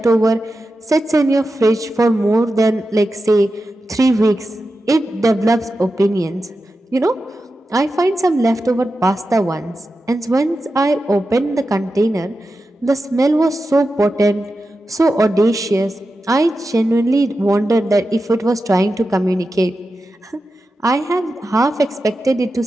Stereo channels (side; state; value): both; normal; correlation 0.91